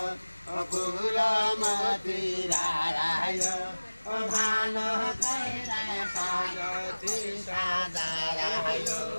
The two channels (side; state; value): both; inverted; correlation -1.00